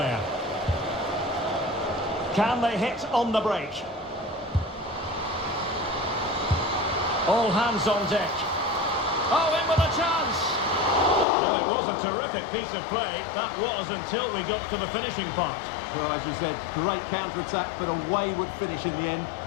Can they hit on the break? All hands on deck. Oh, in with a chance! Well, it was a terrific piece of play. That was until we got to the finishing part. Well, as you said, great counter-attack, but a wayward finish in the end.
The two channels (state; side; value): drops out; right; at 11.2 s